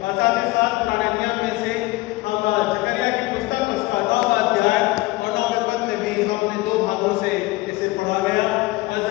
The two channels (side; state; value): right; quieter; 20.6 dB